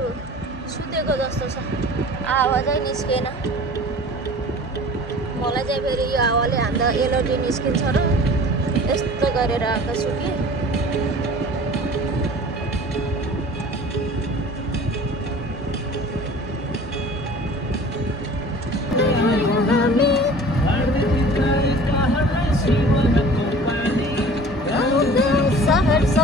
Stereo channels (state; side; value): normal; both; correlation 0.44